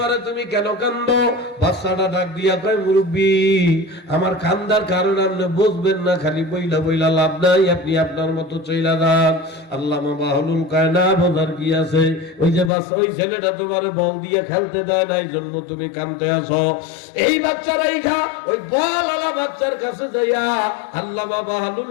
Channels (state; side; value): drops out; right; at 12.7 s